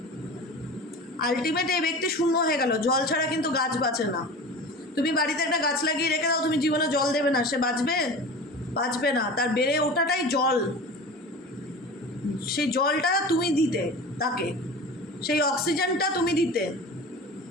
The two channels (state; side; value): normal; both; correlation 0.35